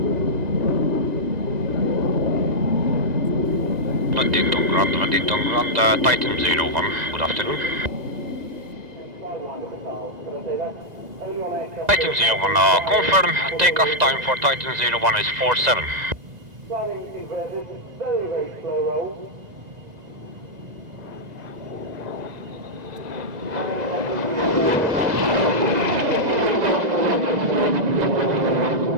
Waddington Grand, Titan 01, good afternoon. Titan 01, confirm, takeoff time for Titan 01 is 47.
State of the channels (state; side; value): late; left; 2.0 ms